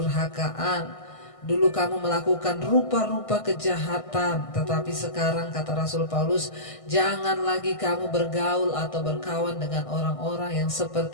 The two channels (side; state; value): right; late; 1.6 ms